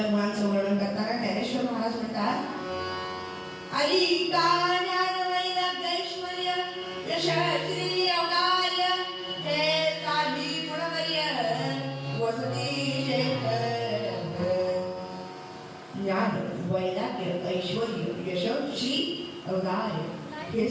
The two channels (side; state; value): both; identical; correlation 1.00